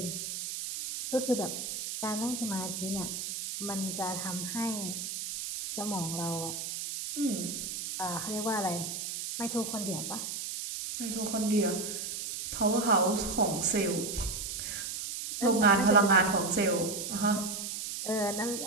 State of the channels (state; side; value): noise; right; hiss, 5 dB below the sound